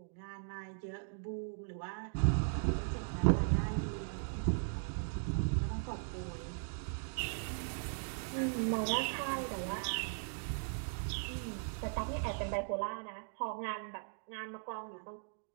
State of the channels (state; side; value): silent; left; digital silence